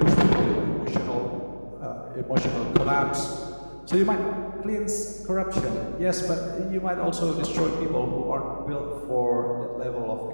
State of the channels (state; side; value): inverted; both; correlation -1.00